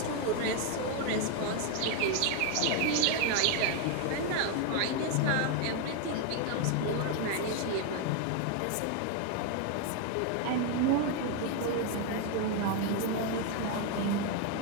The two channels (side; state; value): both; different; correlation 0.01